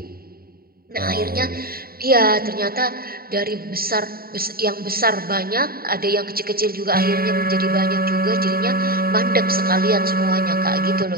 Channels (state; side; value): late; left; 0.43 ms